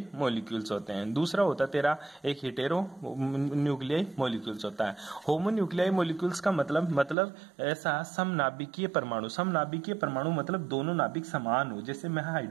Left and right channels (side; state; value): left; drops out; at 7.2 s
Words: मॉलिक्यूल्स होते हैं। दूसरा होता है तेरा एक हेटेरो न्यूक्लियाई मॉलिक्यूल्स होता है। होमो न्यूक्लियाई मॉलिक्यूल्स का मतलब ऐसा समनाभिकीय परमाणु। समनाभिकीय परमाणु मतलब दोनों नाभिक समान हो। जैसे मैं